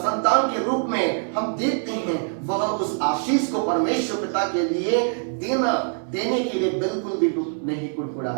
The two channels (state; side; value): silent; left; 63 dB below the other